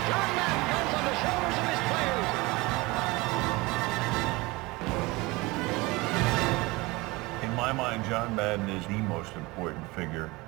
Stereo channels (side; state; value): left; quieter; 23.0 dB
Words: John Madden goes on the shoulders of his players. In my mind, John Madden is the most important figure